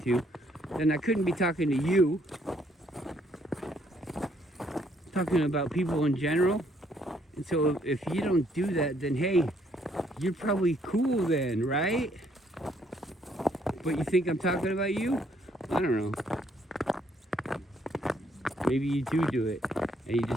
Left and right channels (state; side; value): normal; both; correlation 0.69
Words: then I couldn't be talking to you. Talking about people in general. And so if you don't do that, then hey, you're probably cool then, right? But you think I'm talking about you? I don't know. Maybe you do it, and you